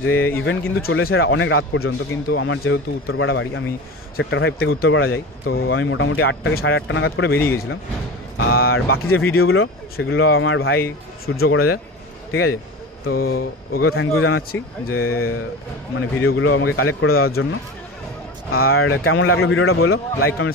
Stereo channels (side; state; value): both; normal; correlation 0.30